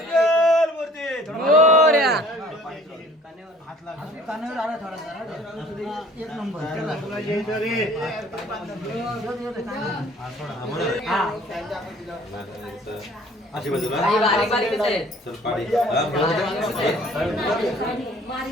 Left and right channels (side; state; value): both; normal; correlation 0.53